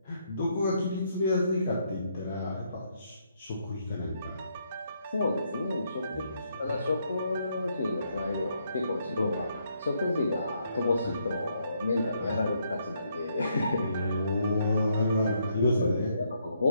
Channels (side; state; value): both; inverted; correlation -0.75